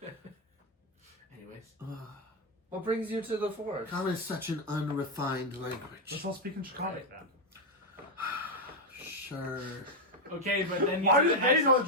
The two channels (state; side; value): normal; both; correlation 0.03